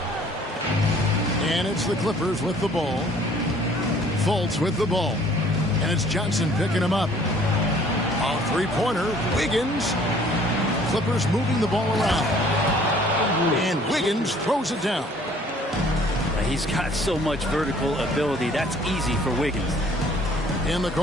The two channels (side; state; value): both; normal; correlation 0.56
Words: And it's the Clippers with the ball. Fultz with the ball. And it's Johnson picking him up. A three-pointer, Wiggins. Clippers moving the ball around. And Wiggins throws it down. He's got so much vertical ability. That's easy for Wiggins. In the